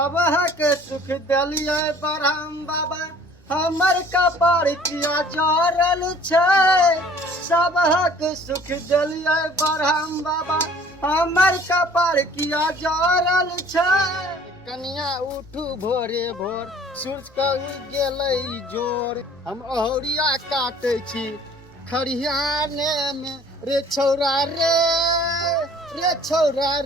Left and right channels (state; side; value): normal; both; correlation 0.53